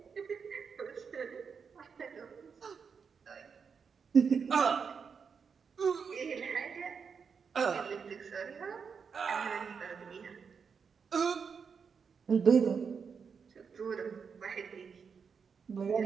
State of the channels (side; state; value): left; quieter; 6.1 dB